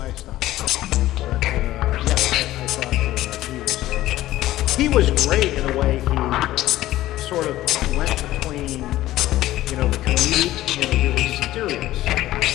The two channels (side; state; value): right; quieter; 15.2 dB